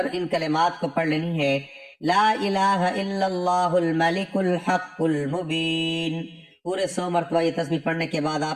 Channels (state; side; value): identical; both; correlation 1.00